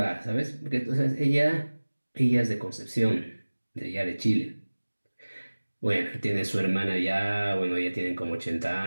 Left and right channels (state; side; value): inverted; both; correlation -1.00